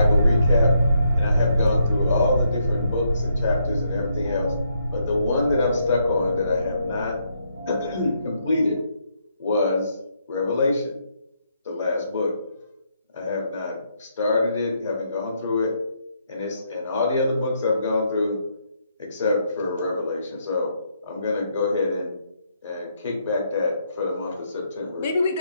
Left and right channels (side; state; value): both; inverted; correlation -0.75